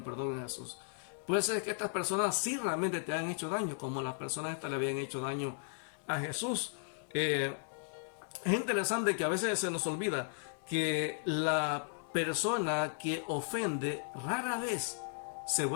perdón a Jesús. Puede ser que estas personas sí realmente te han hecho daño, como las personas estas le habían hecho daño a Jesús. Es interesante que a veces se nos olvida que la persona que ofende rara vez se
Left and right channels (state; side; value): silent; right; digital silence